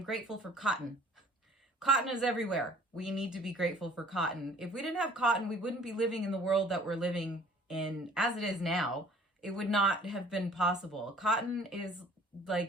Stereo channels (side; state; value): both; normal; correlation 0.53